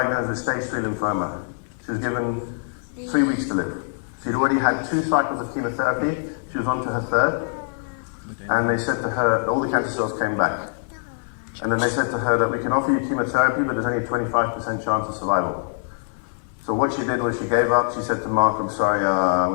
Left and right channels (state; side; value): silent; right; 63 dB below the other